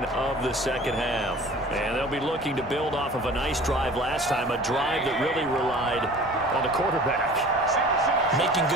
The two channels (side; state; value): both; normal; correlation 0.44